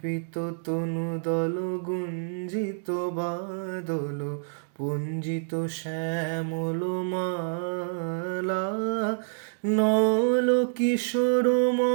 তনু দল গুঞ্জিত বাদল পুঞ্জিত শ্যামল মালা। নল কিশোর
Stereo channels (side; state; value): left; silent; digital silence